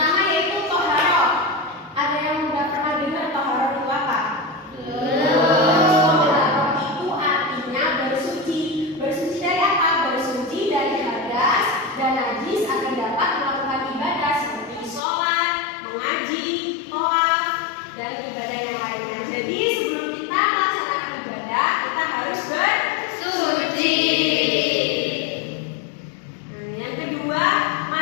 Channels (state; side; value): drops out; right; at 15.0 s